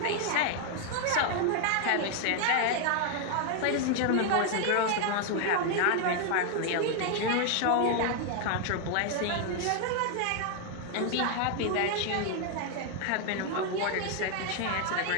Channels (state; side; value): different; both; correlation 0.00